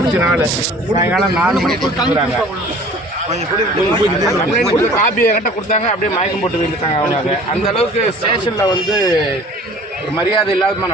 சாயங்காலம் 4 மணிக்கு கொடுத்துருக்காங்க. கம்ப்ளைண்ட் கொடுத்து காப்பி என்கிட்ட கொடுத்தாங்க. அப்படியே மயக்கம் போட்டு விழுந்துட்டாங்க அவங்க. அந்த அளவுக்கு ஸ்டேஷனில் வந்து ஒரு மரியாதை இல்லாதமா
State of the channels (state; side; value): normal; both; correlation 0.48